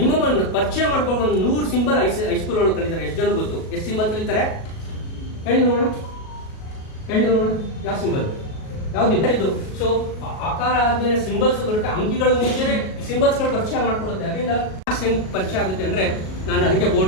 ಪರಿಚಯ ಮಾಡ್ಕೊಂಡು ಒಂದು 100 ಸಿಂಬಲ್ ಹೈಸ್ಕೂಲ್ ಒಳಗೆ ಕಲಿತಾರೆ. ಎಷ್ಟು ಜನ ಗೊತ್ತು? ಎಷ್ಟು ಸಿಂಬಲ್ ಕಲಿತಾರೆ ಹೇಳಿ ನೋಡೋಣ, ಹೇಳಿ ನೋಡೋಣ. ಯಾವ ಸಿಂಬಲ್ ಯಾವ್ದಿಲ್ಲ ಇದು. ಸೊ ಆಕಾರ ಆದ್ಮೇಲೆ ಸಿಂಬಲ್ಸ್ ಬರುತ್ತೆ. ಅಂಕಿಗಳು ಮುಂಚೆನೆ ಸಿಂಬಲ್ಸ್ಗಳು ಪರಿಚಯ ಮಾಡ್ಕೊಡುತ್ತೆ. ಅದರಿಂದ ಮ್ಯಾಥ್ಸ್ ಹೆಂಗ್ ಪರಿಚಯ ಆಗುತ್ತೆ ಅಂದ್ರೆ, ನಾನು ಅದಕ್ಕೆ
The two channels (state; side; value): late; right; 37 ms